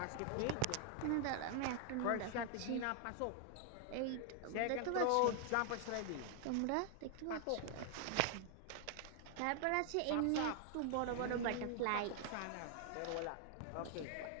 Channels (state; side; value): different; both; correlation 0.00